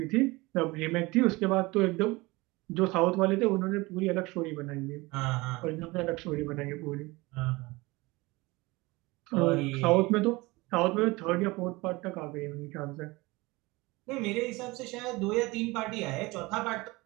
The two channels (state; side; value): quieter; left; 22.6 dB